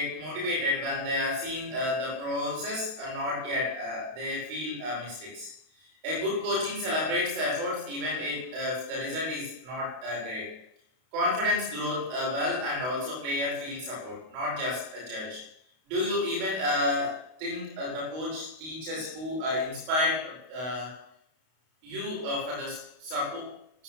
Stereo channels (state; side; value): late; left; 32 ms